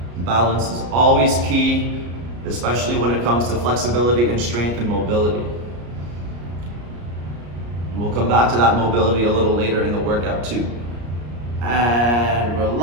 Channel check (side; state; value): left; late; 34 ms